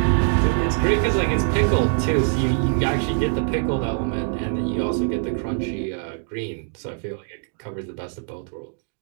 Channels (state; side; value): silent; left; digital silence